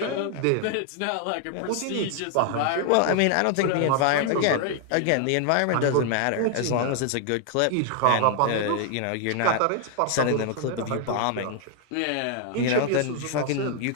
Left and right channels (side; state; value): both; different; correlation 0.00